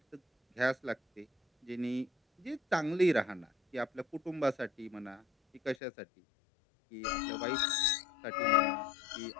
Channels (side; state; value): right; drops out; at 5.8 s